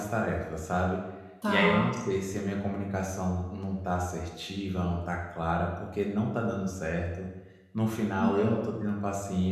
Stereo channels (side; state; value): both; identical; correlation 1.00